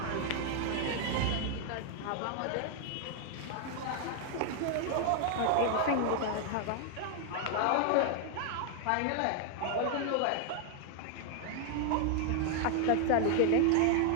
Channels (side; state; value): both; different; correlation 0.00